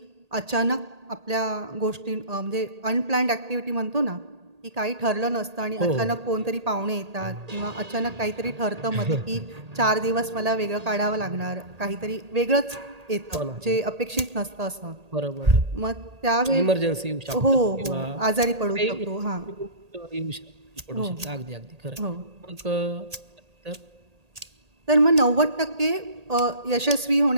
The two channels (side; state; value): left; late; 1.8 ms